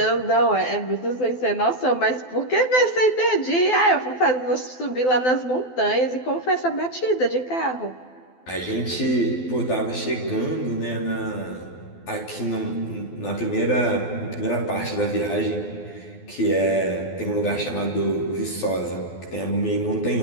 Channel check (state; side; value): late; right; 12 ms